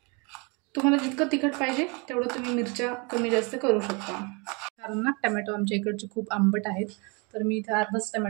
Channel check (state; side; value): quieter; left; 30.7 dB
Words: तुम्हाला जितकं तिखट पाहिजे तेवढं तुम्ही मिरच्या कमी जास्त करू शकता. कारण ना टमॅटो आमच्या इकडचे खूप आंबट आहेत, तर मी इथे अर्धाच